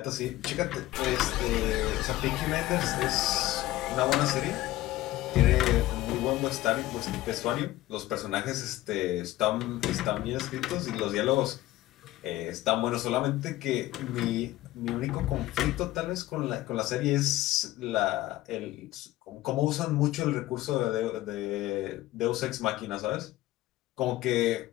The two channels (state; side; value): quieter; right; 16.1 dB